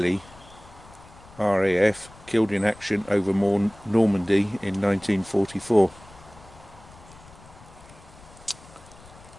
RAF, killed in action over Normandy in 1944.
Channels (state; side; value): noise; left; rumble, 22 dB below the sound